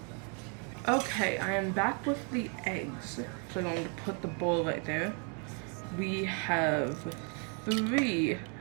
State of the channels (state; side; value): quieter; left; 38.2 dB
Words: Okay, I am back with the eggs. So I'm going to put the bowl right there. We have 3